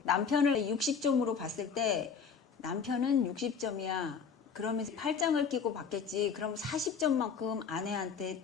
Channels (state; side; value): quieter; right; 6.2 dB